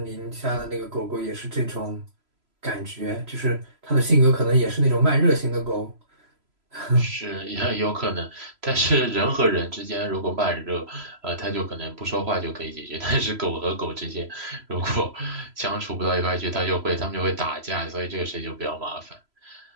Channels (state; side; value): late; left; 3.0 ms